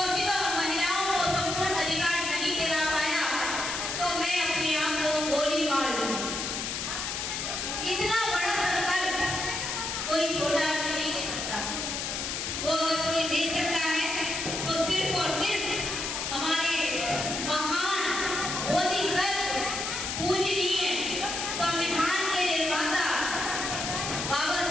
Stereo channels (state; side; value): noise; left; hiss, 3 dB below the sound